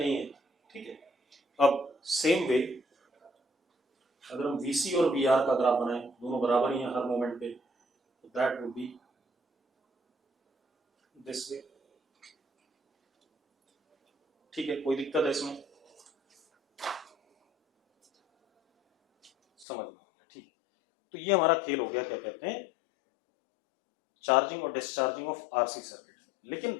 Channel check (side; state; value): right; drops out; at 19.7 s